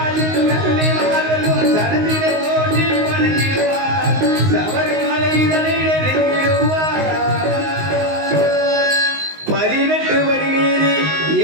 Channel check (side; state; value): left; late; 19 ms